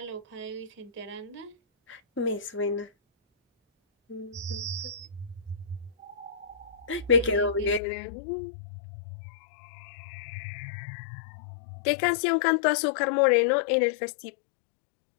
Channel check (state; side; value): drops out; right; at 7.8 s